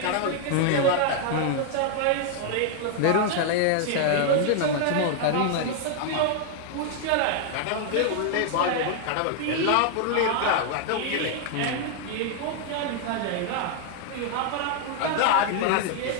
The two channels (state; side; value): different; both; correlation 0.00